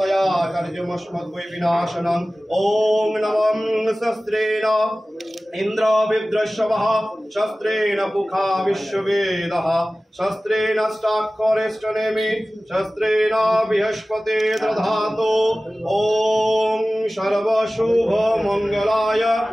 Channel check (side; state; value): both; normal; correlation 0.97